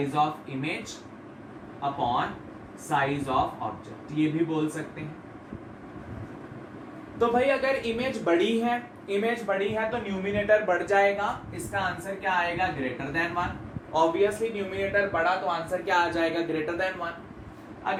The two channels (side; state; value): both; identical; correlation 1.00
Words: of image upon size of object, ये भी बोल सकते हैं। तो भाई अगर इमेज बड़ी है तो न्यूमिनेटर बढ़ जाएगा, इसका आंसर क्या आएगा, ग्रेटर देन 1। ऑब्वियसली न्यूमिनेटर बढ़ा तो आंसर क्या आ जाएगा, ग्रेटर देन 1।